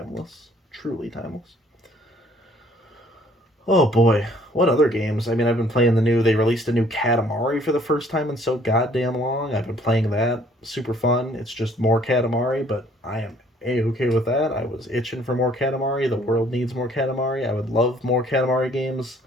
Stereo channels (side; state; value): both; normal; correlation 0.59